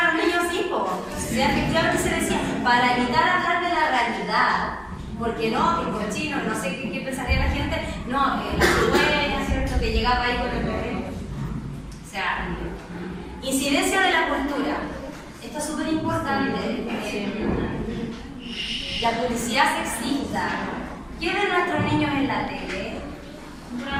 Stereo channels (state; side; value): identical; both; correlation 1.00